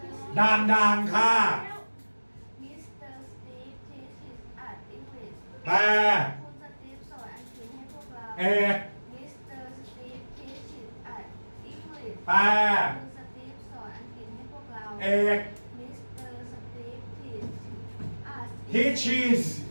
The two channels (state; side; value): inverted; both; correlation -1.00